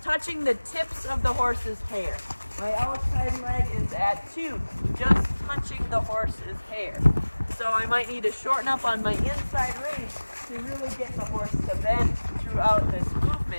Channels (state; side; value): inverted; both; correlation -1.00